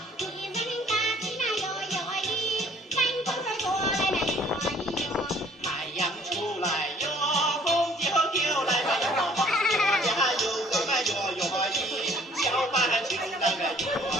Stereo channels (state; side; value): normal; both; correlation 0.57